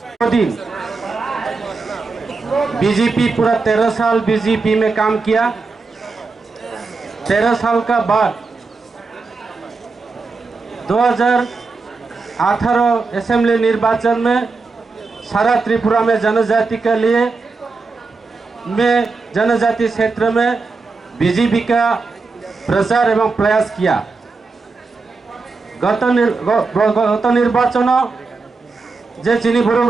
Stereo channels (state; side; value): quieter; left; 4.1 dB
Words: दिन बीजेपी पूरा 13 साल बीजेपी में काम किया। 13 साल का बाद 2018 असेंबली निर्वाचन में सारा त्रिपुरा में जनजाति के लिए जनजाति क्षेत्र में बीजेपी का प्रचार एवं प्रयास किया। गत निर्वाचन जे चिनी